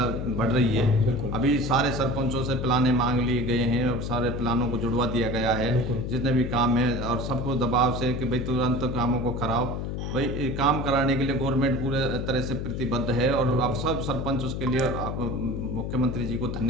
बढ़ रही है। अभी सारे सरपंचों से प्लाने मांग लिए गए हैं और सारे प्लानों को जुड़वा दिया गया है, जितने भी काम है, और सबको दबाव से कि भाई तुरंत कामों को कराओ। भाई काम कराने के लिए गवर्नमेंट पूरे तरह से प्रतिबद्ध है, और अब सब सरपंच उसके लिए मुख्यमंत्री जी को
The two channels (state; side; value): noise; left; hum, 4 dB below the sound